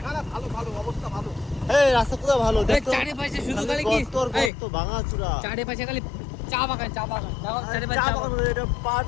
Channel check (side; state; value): right; drops out; at 4.5 s